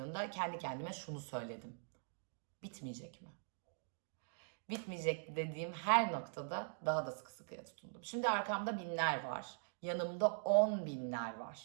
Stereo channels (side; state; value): left; silent; digital silence